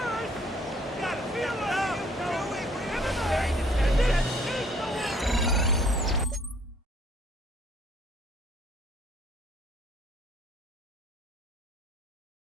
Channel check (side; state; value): both; normal; correlation 0.61